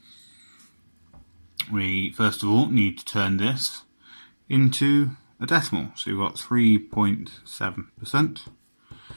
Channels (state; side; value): inverted; both; correlation -1.00